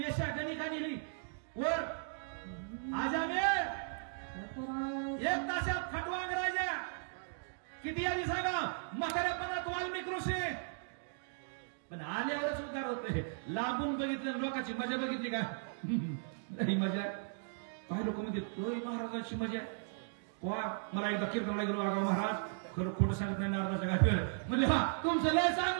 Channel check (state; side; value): silent; left; digital silence